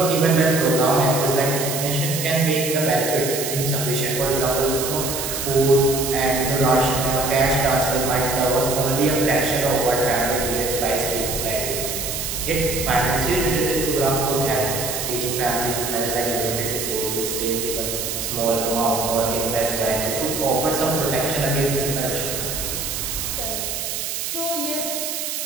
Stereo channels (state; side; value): noise; right; hiss, 4 dB below the sound